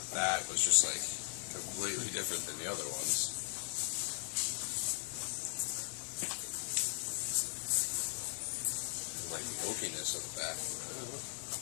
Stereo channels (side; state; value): right; silent; 52 dB below the other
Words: that was just like completely different than the other ones. Like the oakiness of the back.